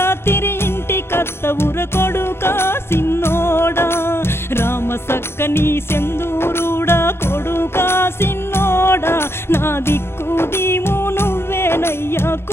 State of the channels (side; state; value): right; late; 0.12 ms